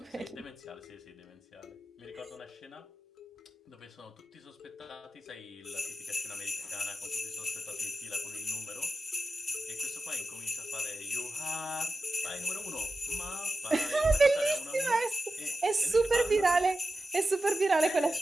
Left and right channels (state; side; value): normal; both; correlation 0.94